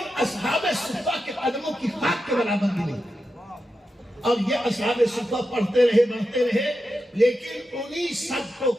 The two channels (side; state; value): both; normal; correlation 0.89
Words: اصحاب صفہ کے قدموں کی خاک کے برابر بھی نہیں. اور یہ اصحاب صفہ پڑھتے رہے لیکن انہی سب کو